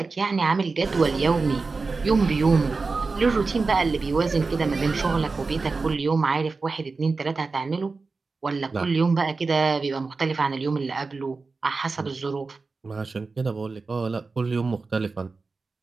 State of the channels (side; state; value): left; quieter; 4.1 dB